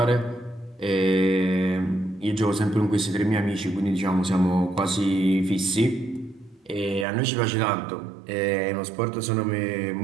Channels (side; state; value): left; drops out; at 7.1 s